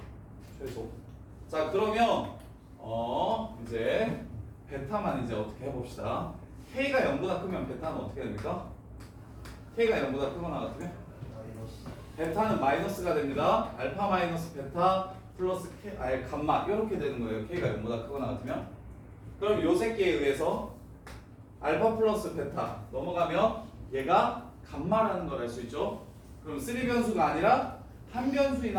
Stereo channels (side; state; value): both; identical; correlation 1.00